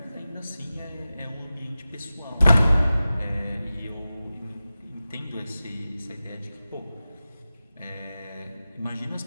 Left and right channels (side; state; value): both; inverted; correlation -0.95